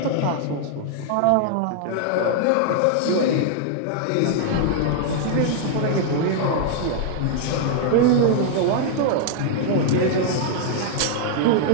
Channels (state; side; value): different; both; correlation 0.00